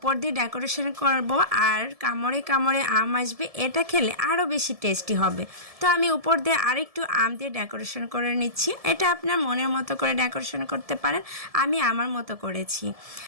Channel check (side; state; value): left; late; 1.7 ms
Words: দিয়ে ডেকোরেশন করব আর কামড়ে কামড়ে আম আসবে, এটা খেলে আরও বেশি টেস্টি হবে। তো আমি উপর দিয়ে আরেকটু আম দিয়ে ডেকোরেশন করে নিচ্ছি। এটা আপনার মনের মতো করে ডেকোরেশন করতে পারেন, আমি আমার মতো করেছি।